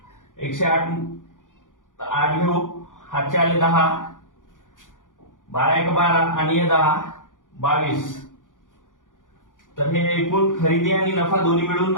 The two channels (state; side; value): late; right; 0.88 ms